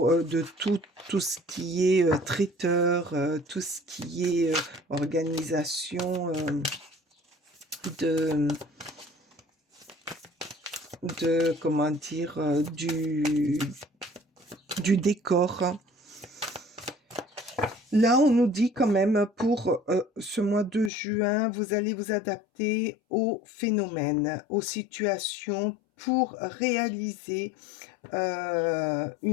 de tout ce qui est traiteur, tout ce qui est organisation comment dire, du décor. Là, on nous dit quand même pour ce mois de juin, vous allez vous adapter aux phénomènes, aux situations pour réaliser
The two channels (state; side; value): drops out; right; at 20.9 s